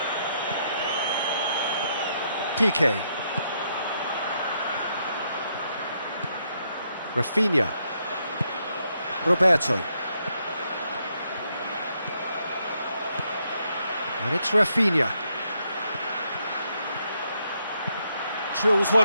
Piqué. Rafinha. Roberto. And it's Rafinha. Drills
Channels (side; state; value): both; inverted; correlation -0.76